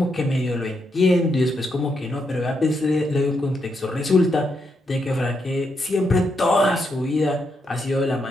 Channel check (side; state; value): both; normal; correlation 0.80